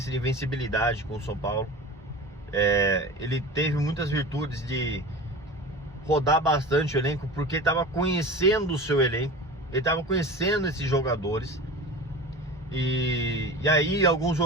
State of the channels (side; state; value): both; normal; correlation 0.33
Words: de invencibilidade com o São Paulo. Ele teve muitas virtudes de rodar bastante o elenco, porque ele estava conhecendo o seu elenco, ele estava conhecendo esses jogadores. E aí alguns